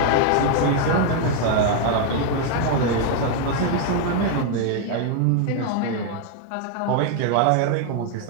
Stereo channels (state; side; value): different; both; correlation 0.00